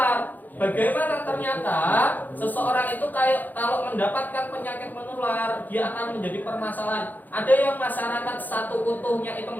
Bagaimana ternyata seseorang itu kalau mendapatkan penyakit menular, dia akan menjadi permasalahan. Ada yang masyarakat satu utuhnya itu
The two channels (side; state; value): right; late; 0.085 ms